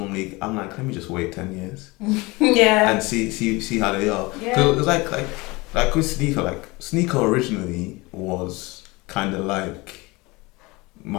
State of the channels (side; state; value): right; quieter; 23.7 dB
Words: like, let me just wait 10 years. Yeah. And see how they are. Yeah. So it's like with Sneaker originally was kind of like